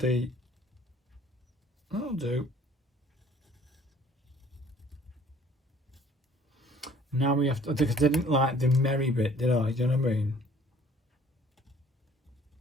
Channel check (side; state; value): both; normal; correlation 0.55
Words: that'll do. Now we have to, because I didn't like the merry bit, did I? Do you know what I mean?